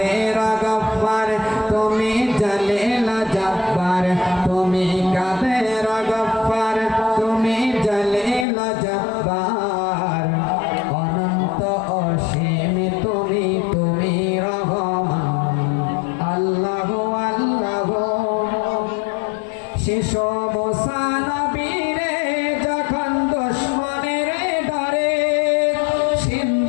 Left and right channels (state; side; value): drops out; right; at 8.5 s